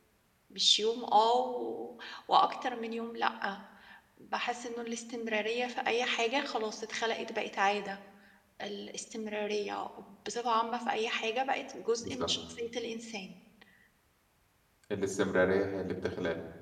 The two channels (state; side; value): identical; both; correlation 1.00